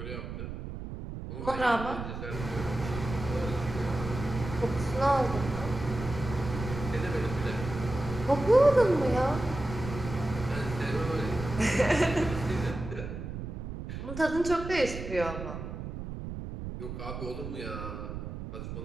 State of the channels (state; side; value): noise; right; rumble, 7 dB below the sound